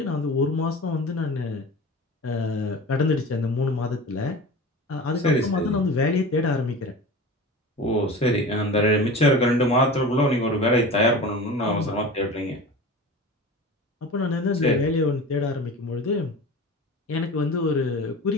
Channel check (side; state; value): both; normal; correlation 0.34